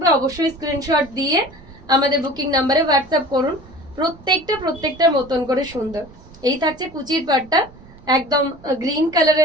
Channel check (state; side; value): noise; right; rumble, 22 dB below the sound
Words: অবশ্যই স্ক্রিনশট দিয়ে আমাদের বুকিং নাম্বারে হোয়াটসঅ্যাপ করুন। প্রত্যেকটার মতন করে সুন্দর। এই থাকছে কুচির পাটটা, একদম গ্রিন